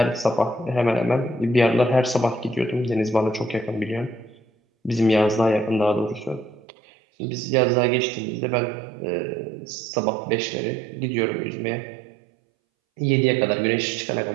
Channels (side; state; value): left; drops out; at 6.6 s